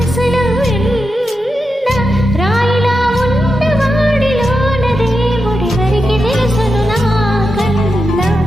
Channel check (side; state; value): both; normal; correlation 0.88